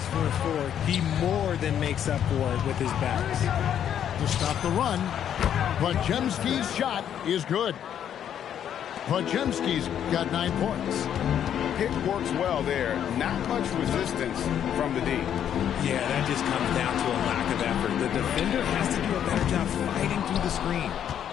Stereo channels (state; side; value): quieter; right; 9.5 dB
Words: for a 4, he more than makes up for it with his bounce. To stop the run, Podziemski's shot is good. Podziemski's got 9 points. Pick works well there. Not much resistance from the D. Yeah, that just comes down to a lack of effort. The defender has to do a better job fighting through the screen.